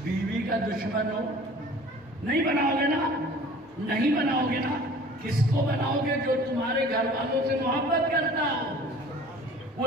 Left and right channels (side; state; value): both; normal; correlation 0.47